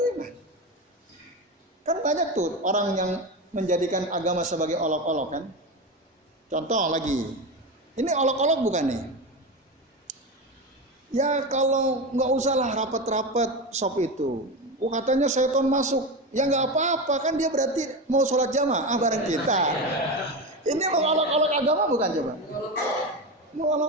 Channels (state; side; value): normal; both; correlation 0.20